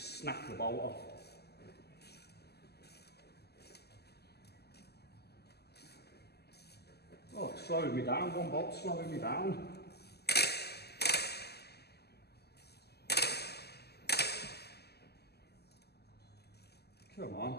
snap the bolt off. Oh, it's slowing me down. One bolt's slowing me down. Come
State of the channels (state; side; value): late; right; 0.47 ms